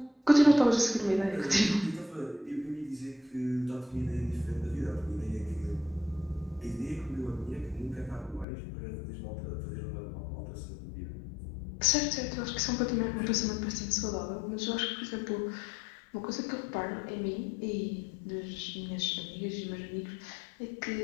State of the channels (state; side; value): drops out; right; at 8.5 s